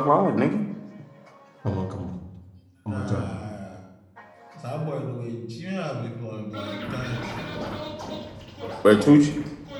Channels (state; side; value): identical; both; correlation 1.00